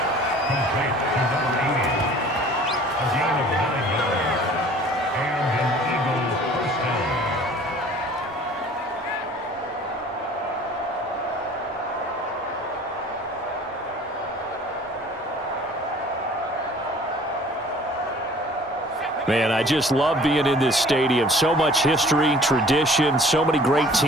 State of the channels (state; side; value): normal; both; correlation 0.50